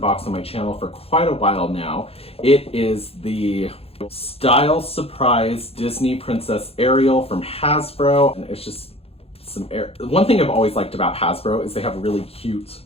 on my channel for quite a while now. It is the Style Surprise Disney Princess Ariel from Hasbro. And it's just one thing I've always liked about Hasbro is they have really cute,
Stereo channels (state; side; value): late; right; 0.29 ms